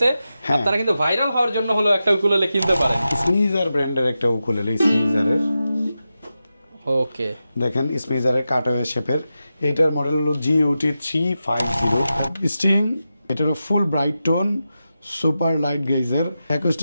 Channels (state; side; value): inverted; both; correlation -0.91